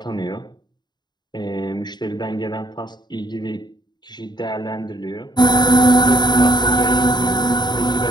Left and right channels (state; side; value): late; right; 0.21 ms